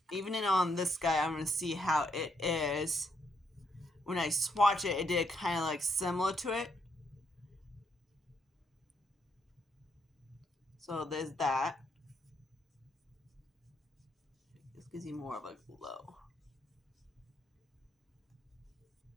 even on this guy, I'm going to see how it is. When I swatch it, it did kind of like similar to it. So there's that. This gives you more of a glow.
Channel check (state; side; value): normal; both; correlation 0.75